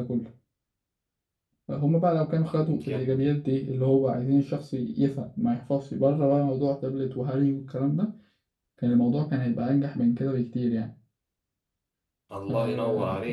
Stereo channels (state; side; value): identical; both; correlation 1.00